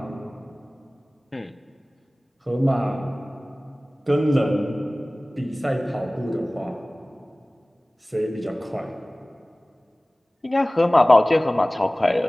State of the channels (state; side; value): normal; both; correlation 0.98